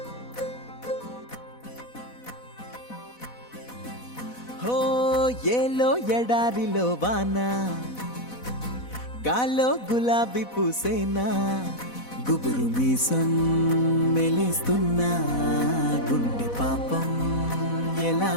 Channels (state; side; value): late; right; 4.1 ms